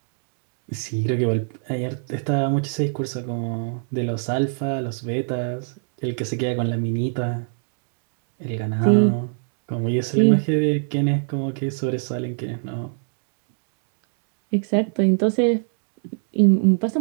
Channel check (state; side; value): silent; left; digital silence